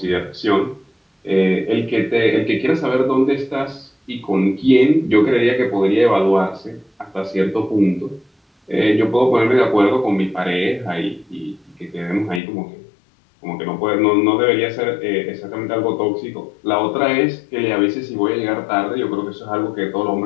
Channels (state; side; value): drops out; right; at 12.4 s